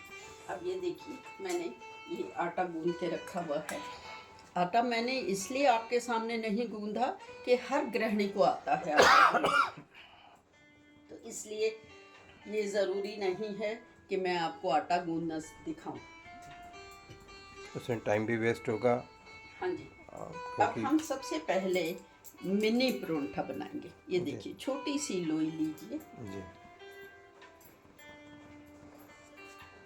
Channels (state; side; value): identical; both; correlation 1.00